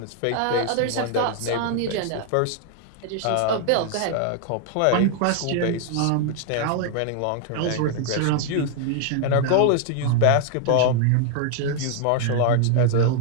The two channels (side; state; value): both; different; correlation 0.00